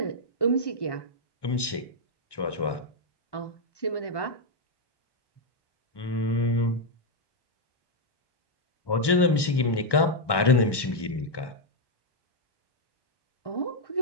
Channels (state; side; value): late; right; 1.1 ms